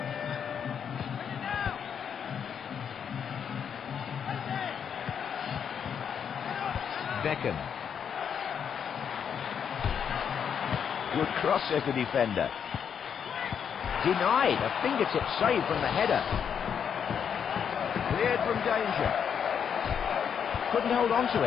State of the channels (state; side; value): quieter; right; 7.7 dB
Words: Beckham. Good cross, says the defender. Denied. A fingertip save from the header. Cleared from danger. Couldn't hold on to